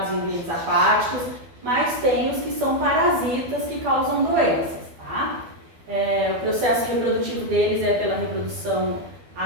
em ambientes aquáticos, mas tem os que são parasitas que causam doenças, tá? O processo reprodutivo deles é pela reprodução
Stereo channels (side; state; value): left; late; 12 ms